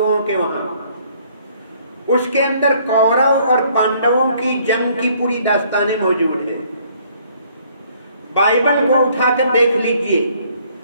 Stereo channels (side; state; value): both; inverted; correlation -0.62